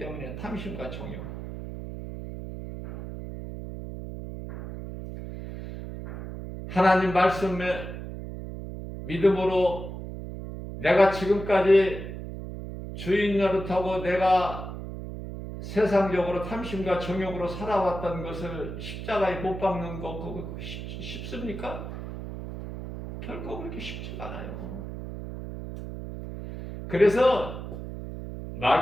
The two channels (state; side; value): noise; right; hum, 8 dB below the sound